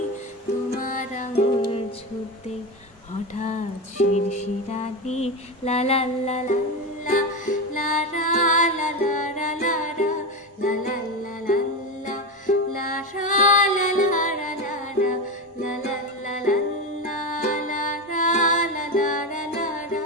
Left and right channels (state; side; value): normal; both; correlation 0.17